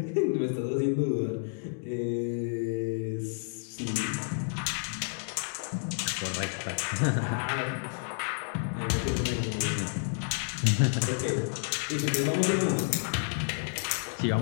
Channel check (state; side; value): silent; right; digital silence